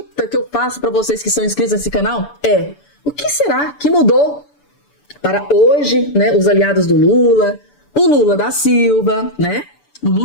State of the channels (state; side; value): late; right; 6.9 ms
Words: que eu faço para vocês que são inscritos nesse canal é: o que será que mudou para hoje, né, os aliados do Lula, o Lula da Silva, né, O